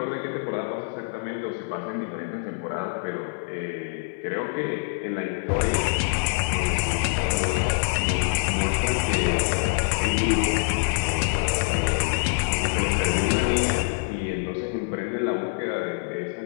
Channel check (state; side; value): silent; right; 58 dB below the other